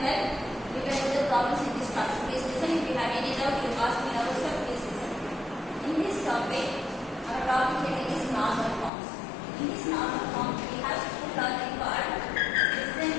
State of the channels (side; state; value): right; drops out; at 8.9 s